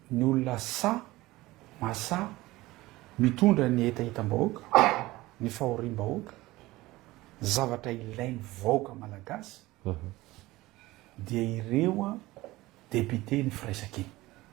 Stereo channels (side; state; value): left; quieter; 18.8 dB